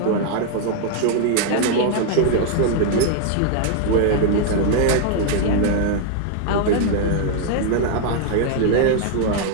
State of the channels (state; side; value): different; both; correlation 0.00